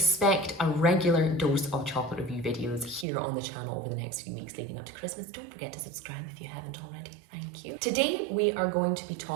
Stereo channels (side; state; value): left; drops out; at 3.1 s